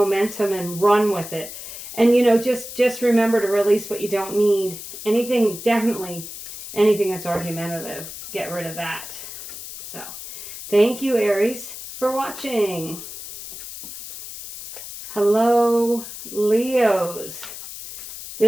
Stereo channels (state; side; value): noise; left; hiss, 11 dB below the sound